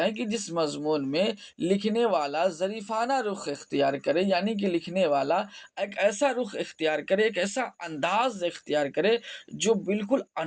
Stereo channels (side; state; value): both; identical; correlation 1.00